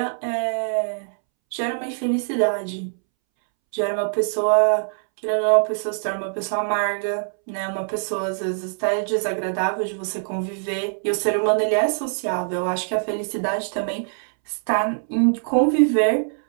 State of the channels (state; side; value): silent; left; 63 dB below the other